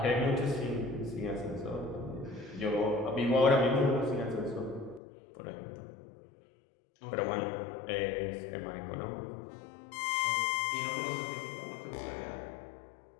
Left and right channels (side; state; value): right; drops out; at 5.0 s